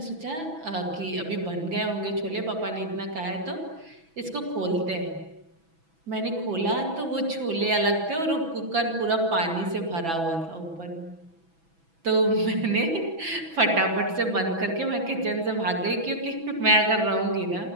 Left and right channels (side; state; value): left; late; 6.1 ms